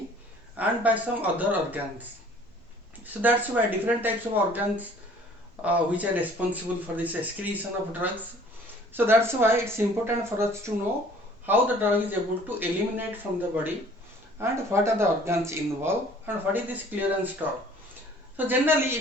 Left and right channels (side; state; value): both; normal; correlation 0.53